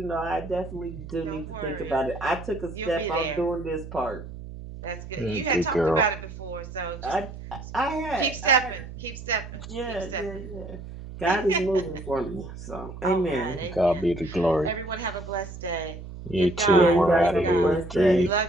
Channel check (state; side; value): noise; right; hum, 12 dB below the sound